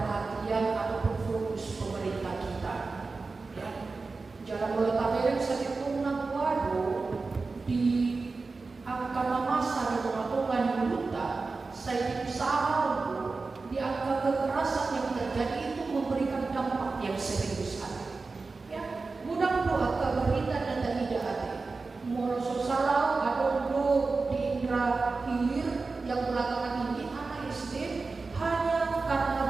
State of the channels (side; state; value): left; quieter; 4.0 dB